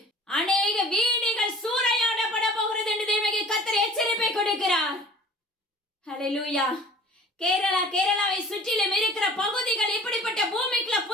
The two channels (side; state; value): both; normal; correlation 0.46